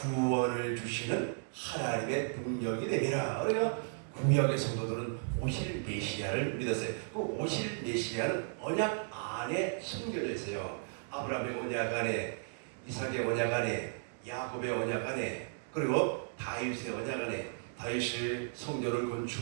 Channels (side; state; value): left; silent; digital silence